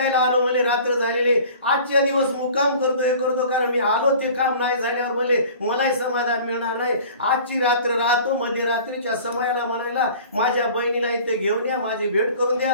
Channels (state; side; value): inverted; both; correlation -0.45